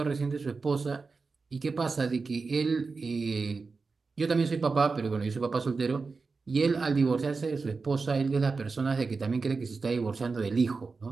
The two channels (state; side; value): quieter; left; 4.4 dB